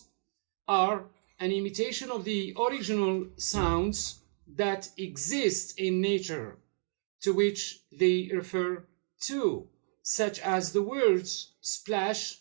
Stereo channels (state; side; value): silent; left; digital silence